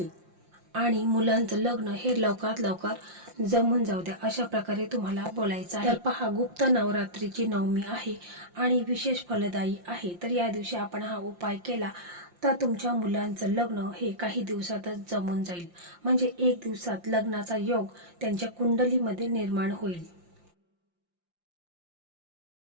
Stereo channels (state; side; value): late; left; 5.7 ms